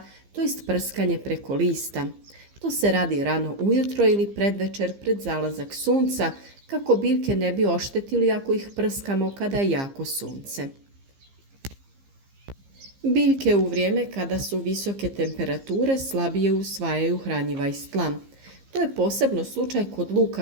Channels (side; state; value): left; late; 15 ms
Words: to jest prskanje preko lista. To se radi rano ujutro ili predvečer pred zalazak sunca kako biljke ne bi oštetili ako ih prskamo kada je jako sunce. Biljke u vrijeme kada su visoke temperature slabije usvajaju hranjiva iz tla. To je posebno slučaj kod